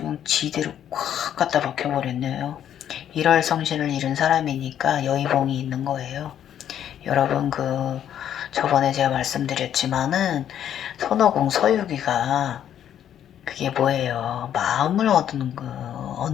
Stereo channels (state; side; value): quieter; right; 10.1 dB